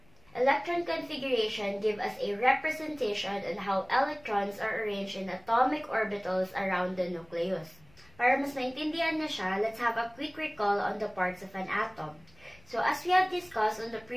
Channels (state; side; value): noise; left; rumble, 28 dB below the sound